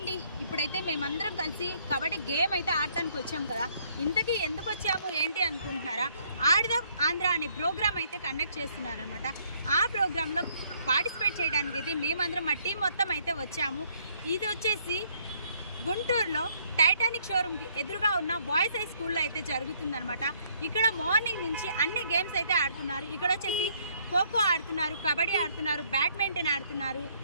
ఇప్పుడైతే మేమందరం కలిసి కబడ్డీ గేమ్ అయితే ఆడటానికి వచ్చాము కదా. ఇంతకీ ఎందుకు వచ్చాము ఏంటి అనుకుంటున్నారా, ఆడదాం ఆంధ్ర అనే ప్రోగ్రామ్ అయితే కండక్ట్ చేస్తున్నారనమాట. ఆ ప్రోగ్రాంలో పార్టిసిపేట్ చేయడానికి అయితే మేమందరం మా టీం మొత్తం అయితే వచ్చాము. ఇది వచ్చేసి గుంటూరులో టైటానిక్ షోరూమ్కి ఎదురుగా ఉన్న బాయ్స్ హై స్కూల్లో అయితే జరుగుతుందనమాట. ఇక్కడ మార్నింగ్ నుంచి అన్ని గేమ్స్ అయితే ఆడుతున్నారు. ఇక్కడ వచ్చేసి ఖోఖో ఆడుతున్నారు, కబడ్డీ ఆడుతున్నారు, బ్యాడ్మింటన్ ఆడుతున్నారు,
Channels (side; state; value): both; inverted; correlation -0.66